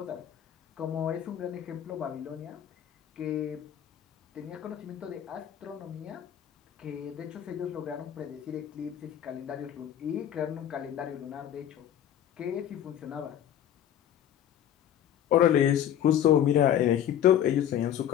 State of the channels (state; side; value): quieter; right; 10.3 dB